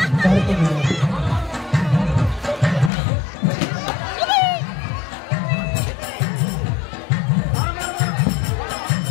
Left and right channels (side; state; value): right; drops out; at 2.9 s